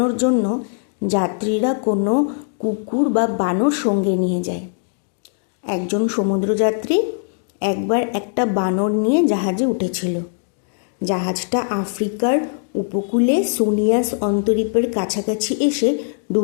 জন্য যাত্রীরা কোনো কুকুর বা বানর সঙ্গে নিয়ে যায়। একজন সমুদ্রযাত্রী একবার একটা বানর নিয়ে জাহাজে উঠেছিল। জাহাজটা আফ্রিকার উপকূলে সোনিয়াস অন্তরীপের কাছাকাছি এসে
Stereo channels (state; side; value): silent; right; digital silence